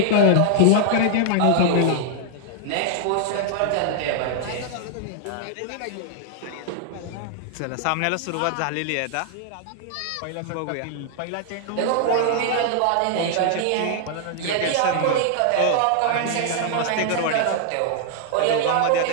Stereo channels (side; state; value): both; different; correlation -0.01